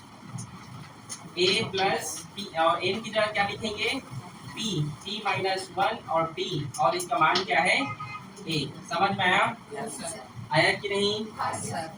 p, और n की जगह क्या लिखेंगे, p माइनस 1 और t, और इसका मान क्या है, a, समझ में आया, आया कि नहीं,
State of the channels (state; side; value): identical; both; correlation 1.00